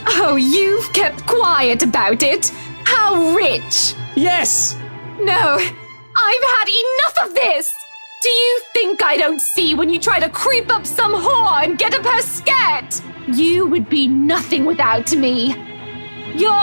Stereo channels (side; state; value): both; inverted; correlation -1.00